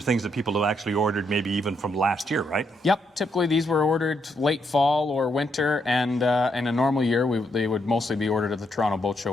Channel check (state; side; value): normal; both; correlation 0.77